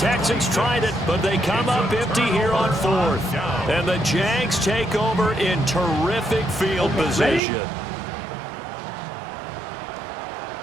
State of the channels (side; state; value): left; drops out; at 7.4 s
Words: tried it, but they come up empty here on fourth. And the Jags take over in terrific field position.